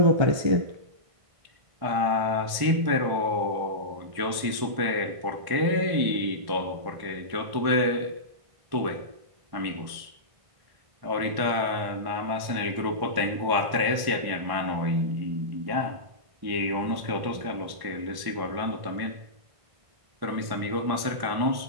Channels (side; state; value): left; late; 1.1 ms